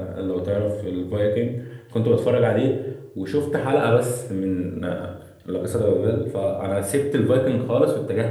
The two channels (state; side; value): identical; both; correlation 1.00